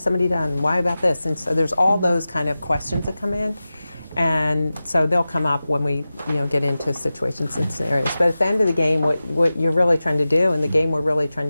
done? Why about this? And so there's all those kind of questions that come in. And so they'll come up when we, get into situations and scenarios. But at the end of the game, what you're really trying to do, and the game we're really trying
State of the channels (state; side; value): inverted; both; correlation -0.95